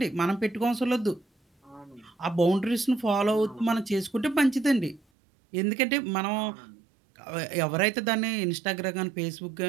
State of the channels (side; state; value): left; drops out; at 5.0 s